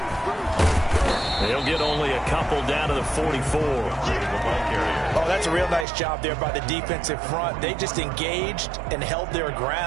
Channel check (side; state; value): left; drops out; at 5.9 s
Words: They'll get only a couple down to the 44. Oh, that's a real nice job there by the defensive front. They just engaged and held their